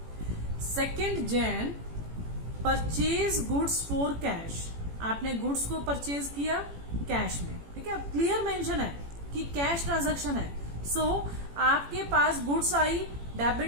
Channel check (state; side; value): late; left; 18 ms